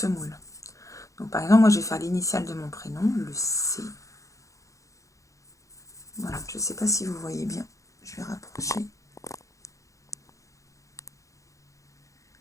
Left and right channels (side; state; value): right; late; 0.15 ms